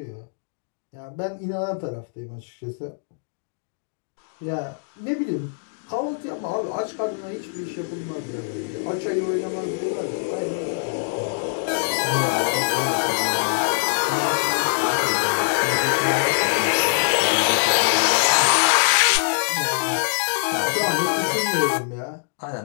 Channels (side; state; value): right; silent; digital silence